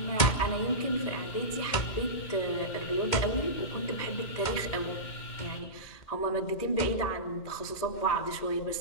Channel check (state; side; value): late; right; 2.1 ms